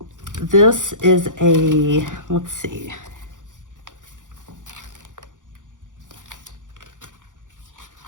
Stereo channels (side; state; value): left; late; 0.87 ms